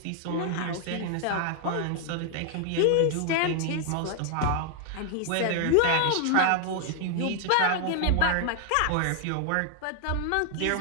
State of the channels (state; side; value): different; both; correlation 0.00